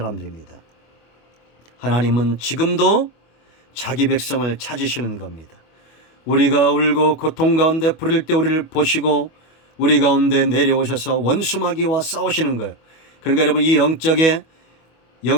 하나님은 지금도 자기 백성을 찾으시는 겁니다. 우리가 울고 고통 가운데 부를 때 우리를 보시고 우리 가운데 내려오셔서 원수마귀와 싸우시는 거예요. 그러니까 여러분, 이 영적의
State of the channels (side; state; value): right; late; 25 ms